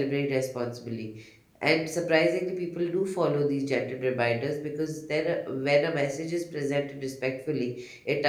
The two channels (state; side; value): identical; both; correlation 1.00